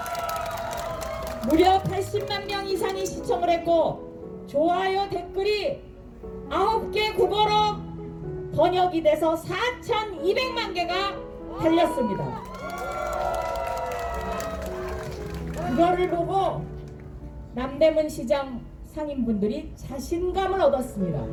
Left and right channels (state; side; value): identical; both; correlation 1.00